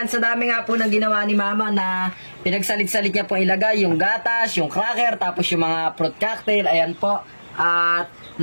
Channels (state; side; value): inverted; both; correlation -1.00